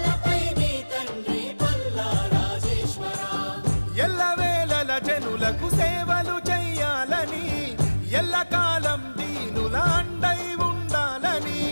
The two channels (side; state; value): both; inverted; correlation -1.00